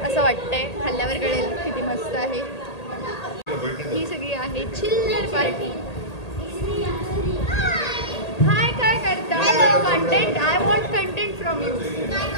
असं वाटतंय. खाल्ल्यावर कळेल किती मस्त आहे. ही सगळी आहे चिल्लर पार्टी. हाय काय करता. Content I want content from you.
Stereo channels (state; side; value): late; right; 1.8 ms